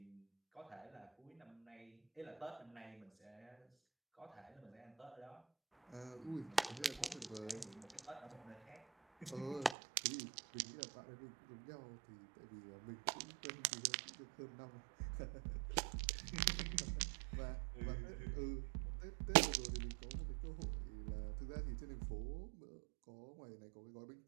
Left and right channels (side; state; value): left; drops out; at 9.8 s